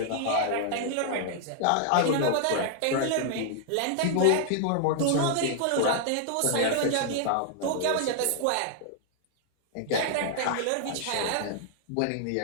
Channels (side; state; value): both; different; correlation -0.01